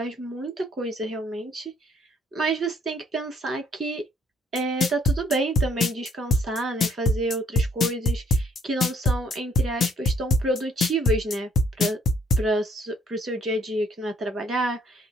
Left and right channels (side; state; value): both; normal; correlation 0.64